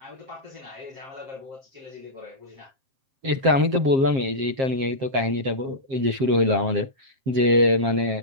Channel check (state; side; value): late; left; 7.5 ms